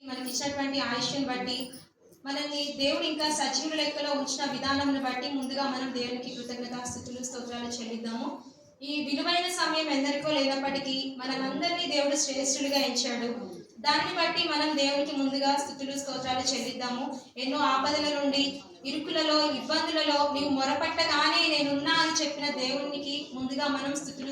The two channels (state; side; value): identical; both; correlation 1.00